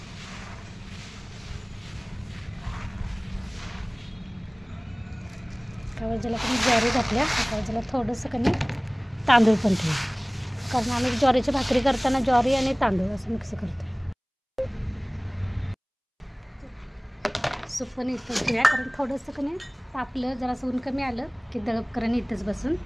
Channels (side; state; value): both; identical; correlation 1.00